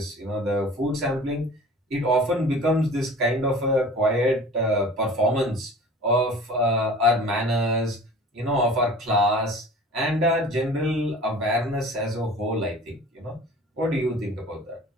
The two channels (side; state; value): both; normal; correlation 0.43